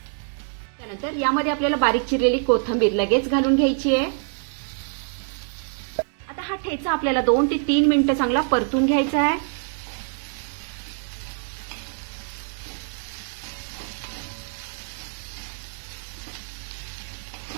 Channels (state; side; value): silent; left; 62 dB below the other